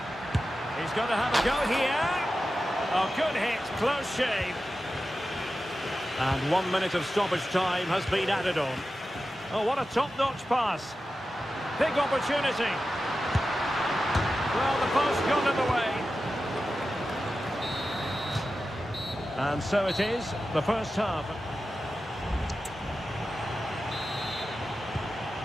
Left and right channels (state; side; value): normal; both; correlation 0.92